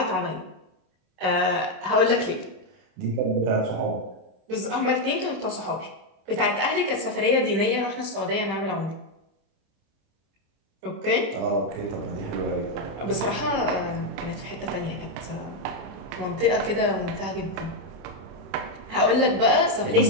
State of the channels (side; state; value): left; late; 26 ms